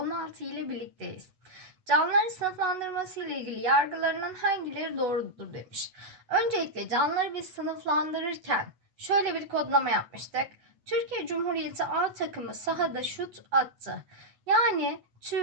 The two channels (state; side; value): late; left; 8.1 ms